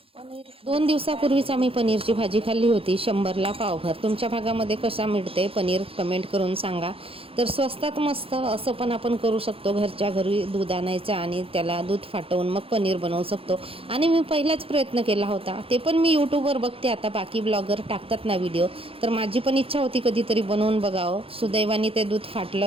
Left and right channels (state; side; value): late; left; 0.27 ms